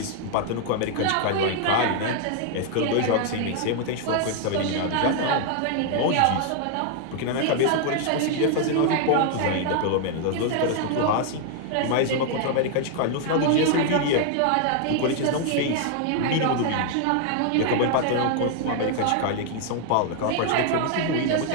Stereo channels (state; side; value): different; both; correlation 0.00